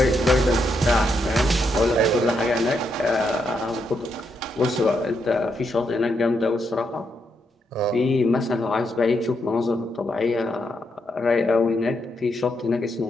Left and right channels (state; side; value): normal; both; correlation 0.80